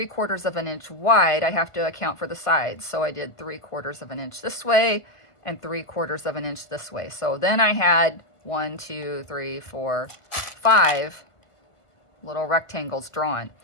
of an inch wide. I have to account for the sides. So I did 3/4 of an inch this way and 3/4 of an inch this way. So then I had 1, 2, 3, 4, 5 little rectangles drawn.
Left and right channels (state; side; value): late; right; 1.5 ms